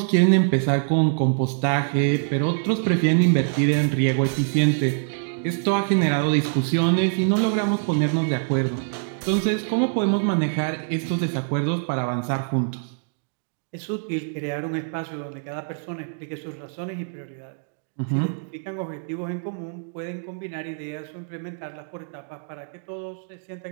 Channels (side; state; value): left; silent; digital silence